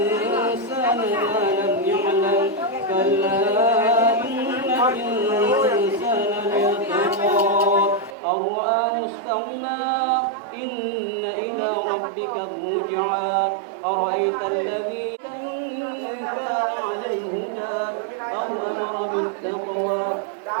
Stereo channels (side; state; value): left; drops out; at 8.2 s